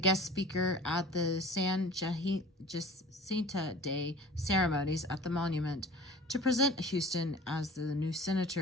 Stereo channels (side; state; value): both; normal; correlation 0.43